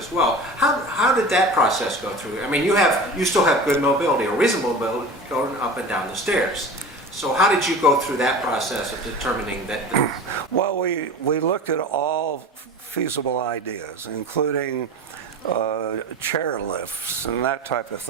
well. How did that process go through? I mean, you still have good mobility or reasonable mobility going up and down the stairs. So how did you go through that process of determining that? Well, we looked at all feasible ideas, including chair lifts and that type of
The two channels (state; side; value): normal; both; correlation 0.33